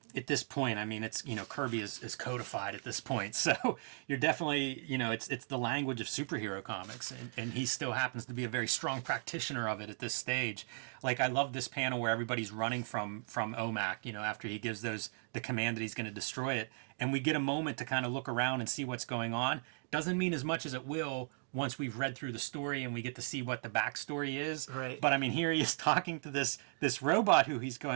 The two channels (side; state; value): left; silent; 53 dB below the other